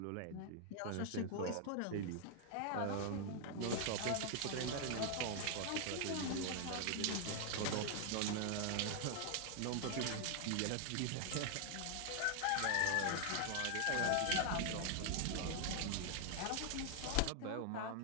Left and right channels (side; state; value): both; different; correlation 0.00